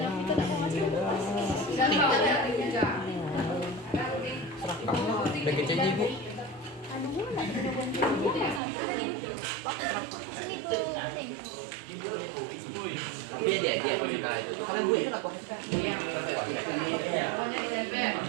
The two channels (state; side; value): drops out; left; at 8.6 s